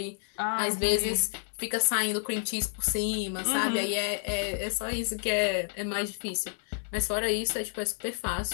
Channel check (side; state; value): right; silent; 58 dB below the other